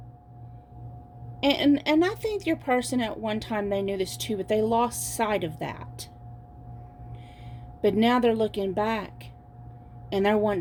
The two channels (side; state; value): both; identical; correlation 1.00